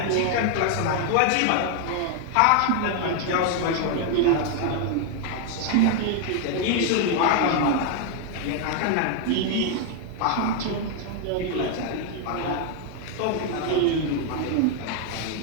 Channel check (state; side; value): different; both; correlation 0.00